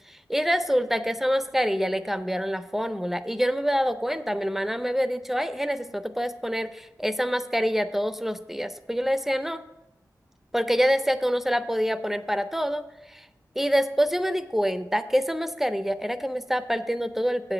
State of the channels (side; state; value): both; normal; correlation 0.97